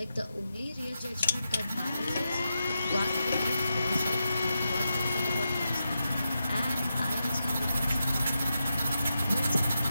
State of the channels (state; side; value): inverted; both; correlation -0.87